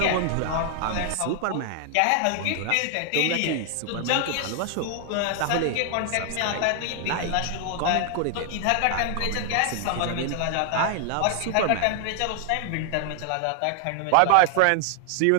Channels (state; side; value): different; both; correlation 0.00